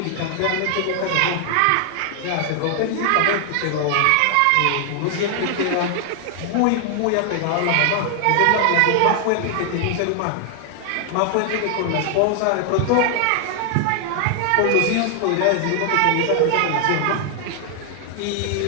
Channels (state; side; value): different; both; correlation 0.00